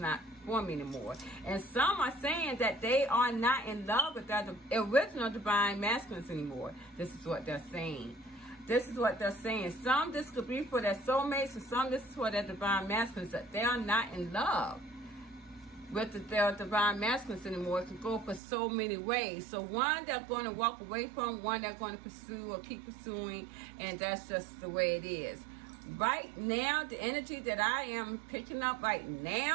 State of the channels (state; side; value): drops out; left; at 18.4 s